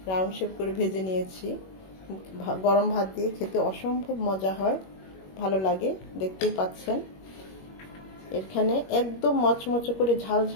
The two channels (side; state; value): right; late; 21 ms